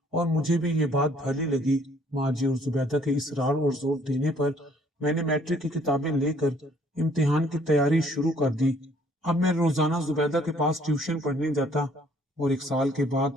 اور مجھے بھی یہ بات بھلی لگی۔ ماں جی اور زبیدہ کے اصرار اور زور دینے پر میں نے میٹرک کی کتابیں لے کر امتحان کی تیاری شروع کر دی۔ اب میں روزانہ زبیدہ کے پاس ٹیوشن پڑھنے جاتا اور 1 سال کے بعد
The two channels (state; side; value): normal; both; correlation 0.61